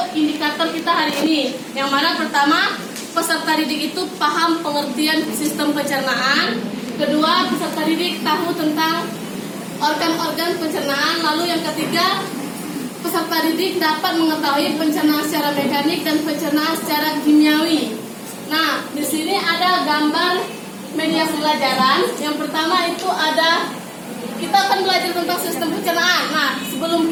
indikator kita hari ini. Yang mana pertama, peserta didik itu paham pengertian sistem pencernaan. Kedua, peserta didik tahu tentang organ-organ pencernaan. Lalu yang ketiga, peserta didik dapat mengetahui pencernaan secara mekanik dan pencernaan secara kimiawi. Nah, di sini ada gambar media pembelajaran. Yang pertama itu ada, kita akan belajar tentang sistem pencernaan. Nah, sebelum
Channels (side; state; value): both; identical; correlation 1.00